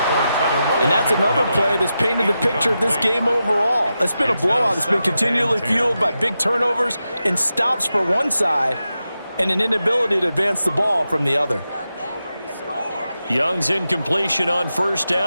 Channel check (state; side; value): inverted; both; correlation -0.89